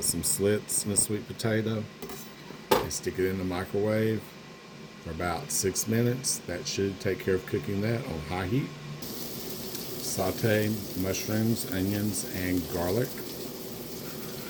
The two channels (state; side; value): identical; both; correlation 1.00